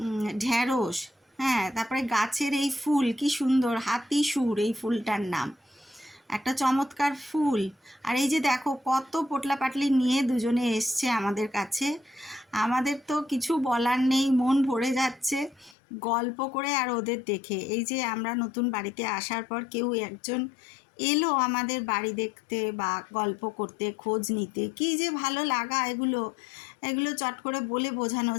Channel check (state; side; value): drops out; right; at 15.8 s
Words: ঢ্যাঁড়স, হ্যাঁ, তারপরে গাছের এই ফুল, কি সুন্দর হাতি সুর, এই ফুলটার নাম, একটা চমৎকার ফুল। আর এই যে দেখো কত পোটলা পাটলি নিয়ে দুজনে এসছে আমাদের কাছে। আমাদের তো কিছু বলার নেই, মন ভরে যাচ্ছে গল্প করে আর ওদের দেখে। এই যে আমরা নতুন বাড়িতে আসার পর কেউ একজন এলো আমাদের বাড়ি দেখতে বা গল্প করতে, খোঁজ নিতে, কি যে ভালো লাগা এগুলো চট করে বলে বোঝানো